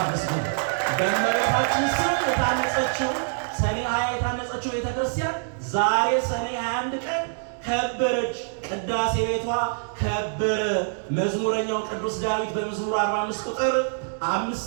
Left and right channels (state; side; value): silent; left; digital silence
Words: በእመቤታችን ስም የታነጸችው ሰኔ 20 የታነጸችው ቤተ ክርስቲያን ዛሬ ሰኔ 21 ቀን ከበረች። ቅዳሴ ቤቷ ከበረ። መዝሙረኛው ቅዱስ ዳዊት በመዝሙር 45 ቁጥር